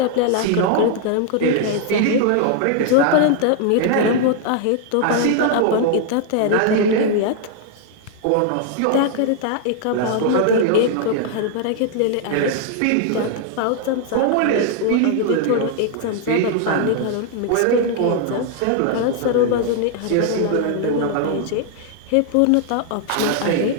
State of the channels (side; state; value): both; different; correlation 0.00